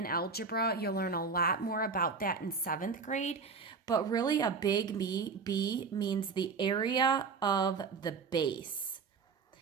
algebra, you'll learn a lot more about that in 7th grade, but really a big B means the area of the base.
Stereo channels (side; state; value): left; quieter; 5.0 dB